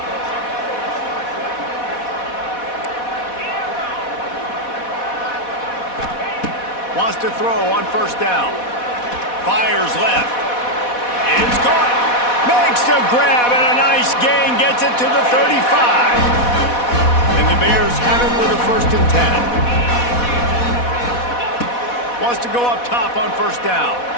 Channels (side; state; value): right; late; 4.1 ms